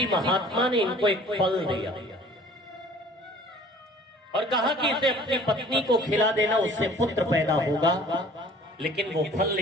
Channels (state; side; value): normal; both; correlation 0.50